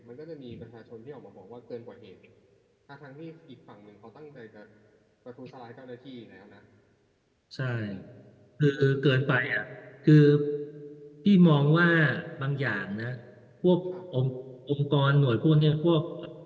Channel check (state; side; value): identical; both; correlation 1.00